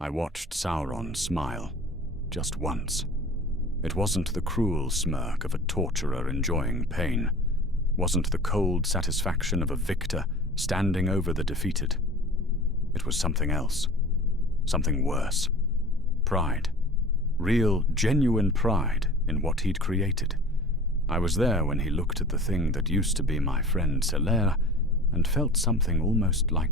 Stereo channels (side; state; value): both; normal; correlation 0.41